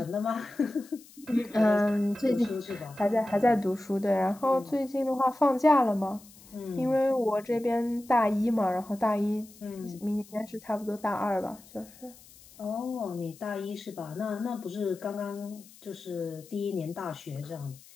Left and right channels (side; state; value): left; noise; hiss, 23 dB below the sound